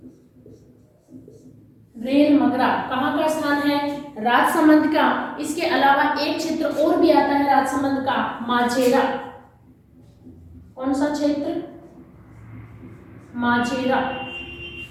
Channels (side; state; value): both; identical; correlation 1.00